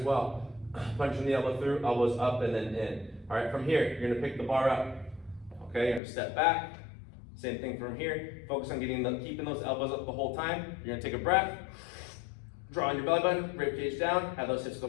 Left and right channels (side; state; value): right; drops out; at 6.0 s